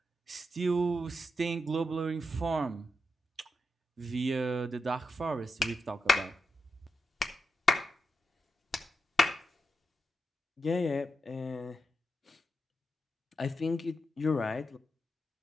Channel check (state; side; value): normal; both; correlation 0.87